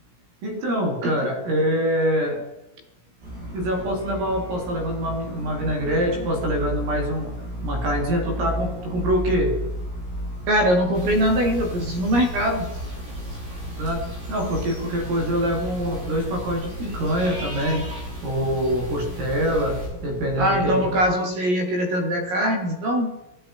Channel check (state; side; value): late; left; 17 ms